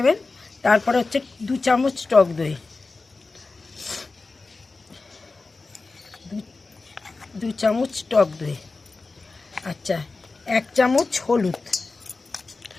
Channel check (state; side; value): quieter; right; 3.8 dB